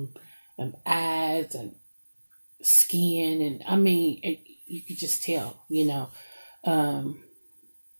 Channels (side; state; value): both; inverted; correlation -1.00